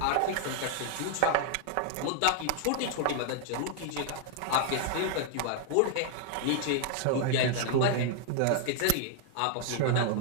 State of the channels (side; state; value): both; different; correlation 0.01